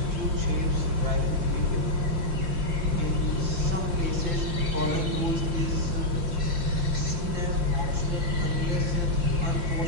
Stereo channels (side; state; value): left; late; 5.6 ms